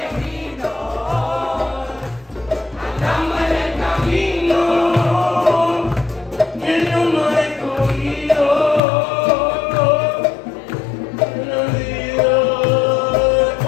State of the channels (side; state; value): right; drops out; at 8.8 s